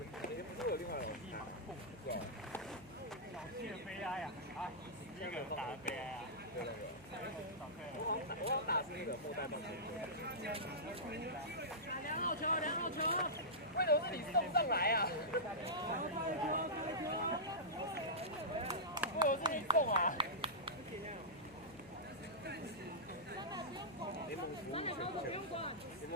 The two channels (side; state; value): left; noise; hum, 24 dB below the sound